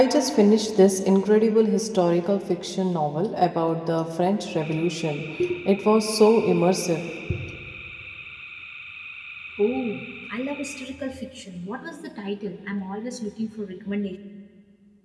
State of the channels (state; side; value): identical; both; correlation 1.00